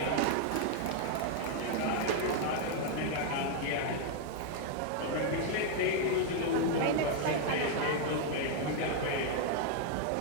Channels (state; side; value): different; both; correlation 0.00